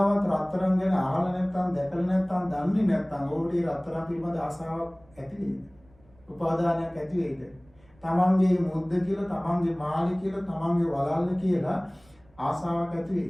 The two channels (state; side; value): noise; right; rumble, 30 dB below the sound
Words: රත්තරන් ගැන අහලා නැත්නම් දැකලා නැත්නම් දන්නේ නැත්නම් ඔබට ඒ රත්තරන් පිළිබඳ ආසාවක් ඇති වෙයිද? උපාදානයක් ඇති වෙයිද? තමන්ගේ මුද්ද කියලා, තමන්ගේ මාළි කියලා, තමන්ගේ වලල්ල කියලා ආසාවක් ඇති